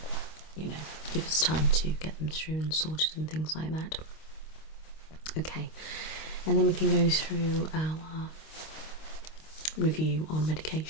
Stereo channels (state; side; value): late; right; 25 ms